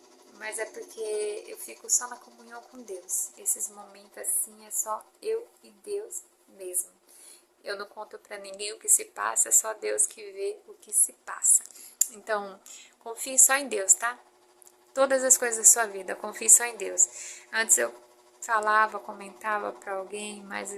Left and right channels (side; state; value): both; identical; correlation 1.00